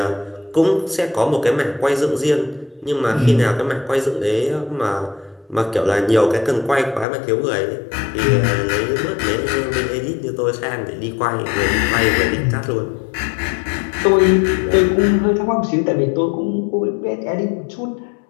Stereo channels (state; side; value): drops out; right; at 7.1 s